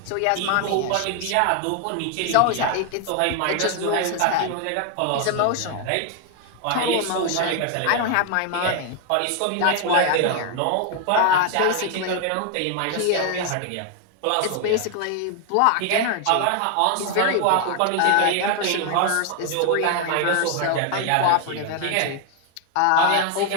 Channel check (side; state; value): both; different; correlation 0.00